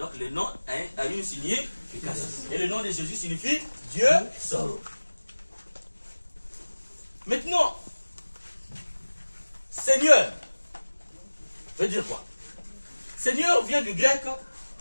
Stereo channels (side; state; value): both; inverted; correlation -1.00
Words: le nom a une signification. Et le nom de Jésus signifie Dieu sauve. Maintenant, Seigneur veut dire quoi? Seigneur vient du grec